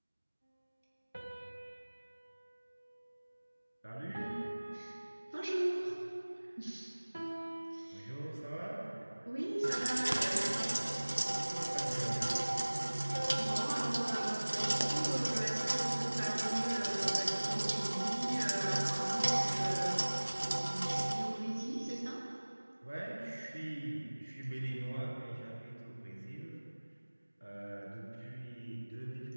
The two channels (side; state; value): both; inverted; correlation -1.00